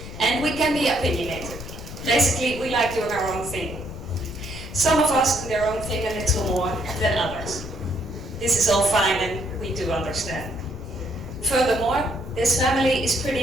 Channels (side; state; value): left; noise; rumble, 11 dB below the sound